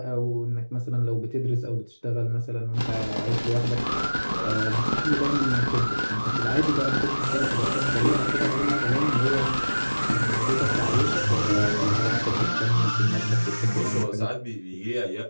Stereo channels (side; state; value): both; inverted; correlation -1.00